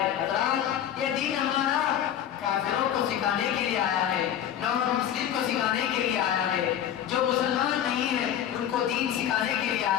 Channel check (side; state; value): right; quieter; 10.3 dB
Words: حضرات یہ دین ہمارا کافروں کو سکھانے کے لیے آیا ہے, نان مسلم کو سکھانے کے لیے آیا ہے, جو مسلمان نہیں ہے ان کو دین سکھانے کے لیے